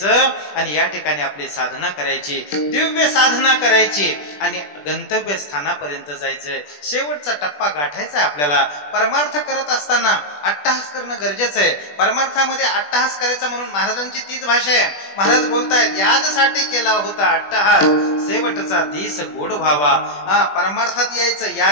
आणि या ठिकाणी आपली साधना करायची, दिव्य साधना करायची आणि गंतव्य स्थानापर्यंत जायचंय. शेवटचा टप्पा गाठायचा आपल्याला. परमार्थ करत असताना अट्टहास करणं गरजेचं आहे. परमार्थामध्ये अट्टहास करायचा म्हणून महाराजांची तीच भाषा आहे. महाराज बोलतायत याजसाठी केला होता अट्टहास, शेवटचा दिस गोड व्हावा. परमार्थात यायचं.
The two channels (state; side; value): late; right; 20 ms